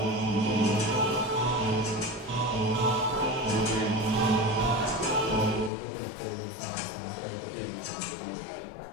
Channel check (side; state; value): right; drops out; at 5.7 s